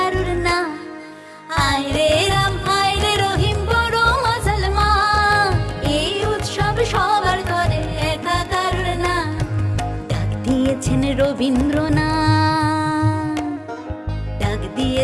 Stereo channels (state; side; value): identical; both; correlation 1.00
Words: না। আয় রে রাম আয় রে রহিম বড় মাছাল মা, এই উৎসব সবার করে একা কারুর না। ডাক দিয়েছেন রবীন্দ্রনাথ, ডাক